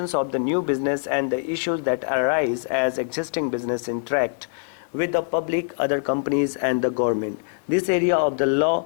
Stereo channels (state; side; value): silent; right; digital silence